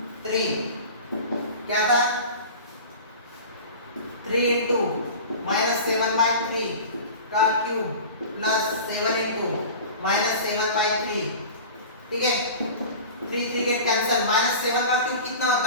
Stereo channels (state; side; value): inverted; both; correlation -0.36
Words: क्या था, 3 into -7/3 का क्यूब प्लस 7 into -7/3, ठीक है। 3 गेट कैंसिल। -7 का क्यूब कितना